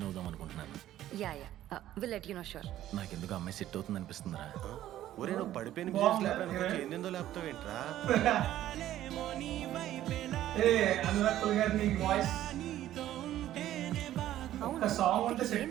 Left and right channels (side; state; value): left; quieter; 13.1 dB